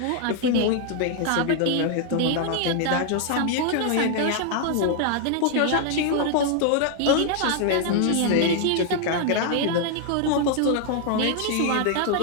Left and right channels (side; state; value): both; different; correlation 0.00